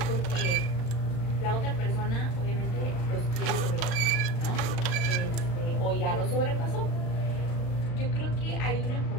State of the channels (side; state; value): right; late; 35 ms